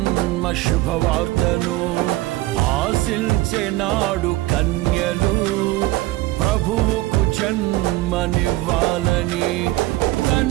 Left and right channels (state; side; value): quieter; left; 18.0 dB